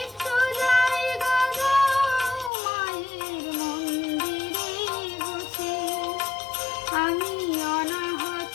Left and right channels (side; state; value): right; drops out; at 2.5 s